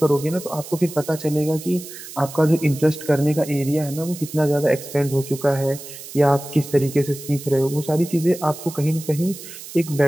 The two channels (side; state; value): right; noise; hiss, 14 dB below the sound